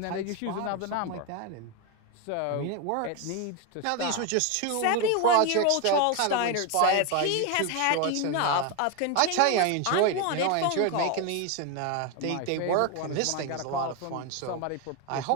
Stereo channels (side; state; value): both; different; correlation 0.02